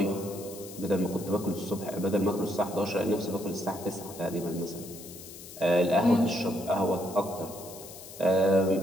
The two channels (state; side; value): noise; left; hiss, 15 dB below the sound